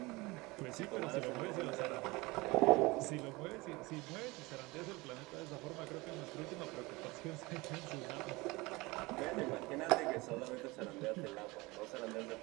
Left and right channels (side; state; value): left; quieter; 23.2 dB